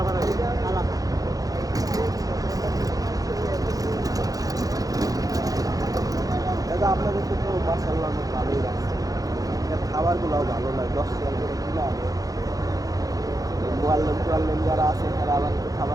আসে আলাদা। দাদা আপনাদের তো মাশাআল্লাহ অনেক ভালোই লাগছে, খাবারগুলোও ভালো লাগে, 10 টাকা করে কিনা আনে। মোয়াল্লেম যারা আছে তারা আবার একটু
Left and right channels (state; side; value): late; left; 0.17 ms